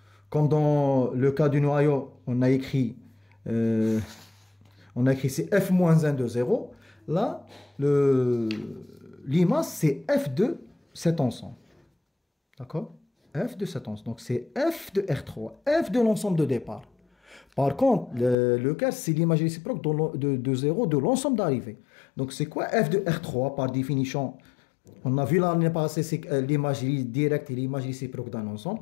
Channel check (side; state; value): right; drops out; at 18.4 s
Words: Comme dans le cas du noyau, on a écrit c'est f moins 1 de 0. Là, l'image, c'est f de cet ensemble. D'accord? F de cet ensemble. Donc, c'est f de R3. F de l'ensemble de départ. Par contre, le quart, c'est l'image réciproque de 0 de l'ensemble d'arrivée. Donc, c'est quoi f de R3 par définition? On a vu l'année passée, c'est l'image directe et l'image réciproque d'un ensemble.